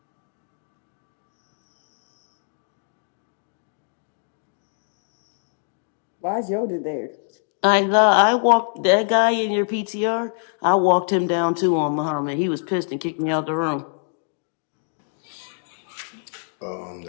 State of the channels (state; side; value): silent; right; digital silence